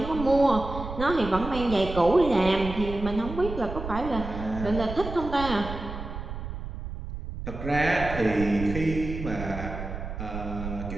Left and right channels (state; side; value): noise; right; rumble, 8 dB below the sound